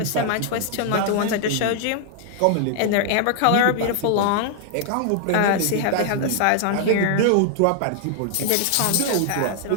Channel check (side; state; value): both; different; correlation 0.00